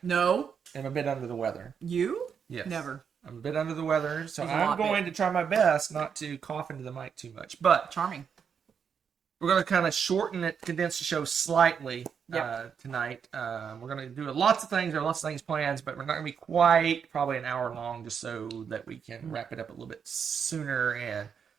No. am a bit under the weather. You? Yes. Never. I'm a bit under the weather, so He's a I'm lot going to try my best not to cough into the mic too much. But Charming. we're going to kind of shorten it, condense the show slightly tonight. We're going to do lots of things. There are lots of things planned, but we're not going to be quite probably an hour long just so that we can wrap it up a little bit sooner and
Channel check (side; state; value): left; quieter; 7.0 dB